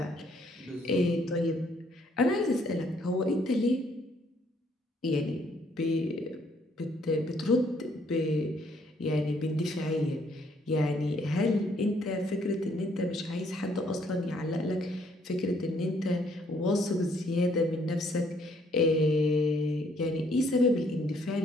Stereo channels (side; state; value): both; normal; correlation 0.67